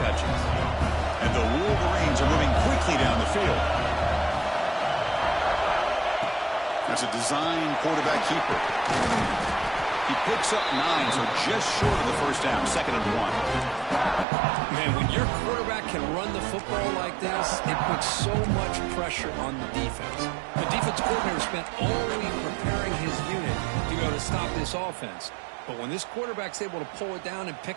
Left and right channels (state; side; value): drops out; left; at 14.2 s